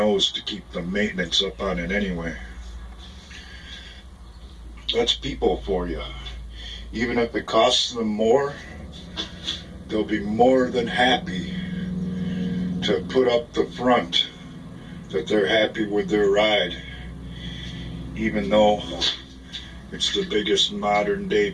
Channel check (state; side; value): identical; both; correlation 1.00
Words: to keep the maintenance up on it anyway. That's people for you. Even if it costs them more, they'll be more than happy to put up the front that they're happy with their ride, even though it's the biggest modern day